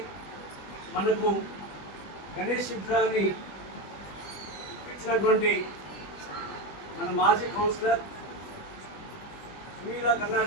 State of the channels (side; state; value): right; late; 20 ms